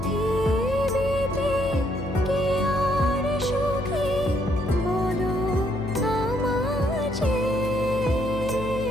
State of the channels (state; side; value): noise; left; hum, 8 dB below the sound